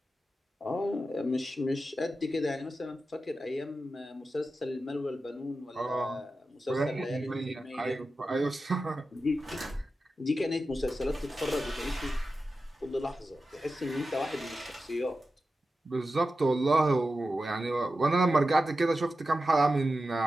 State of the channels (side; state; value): both; normal; correlation 0.92